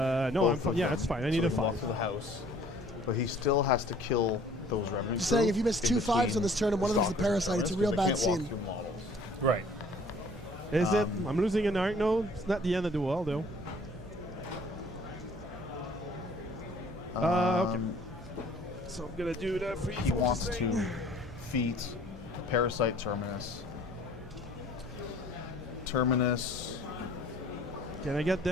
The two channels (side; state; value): both; normal; correlation 0.54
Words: No, both I'm fine. of Yeah, them, that's fine. I so need they a can walk 5. to the house, but he still has to kill those revenant. Just saying, crew if you miss in 2 5s between on this turn and one of them's the stalkers and parasite, it's a terrorists, real 'cause they bad can't scene. walk through models. Right. Is it? I'm losing an arc node. It's not the end of the world, though. Okay. So I'm gonna do that for He wants to feat parasite Terminus. Terminus Can I get